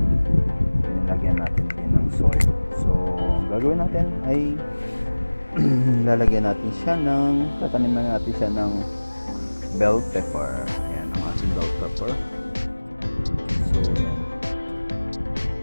Nilagyan natin din ng soil. So, ang gagawin natin ay lalagyan natin siya tataniman natin siya ng bell pepper. Ayan ang ating bell pepper. So, yan.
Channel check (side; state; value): both; inverted; correlation -1.00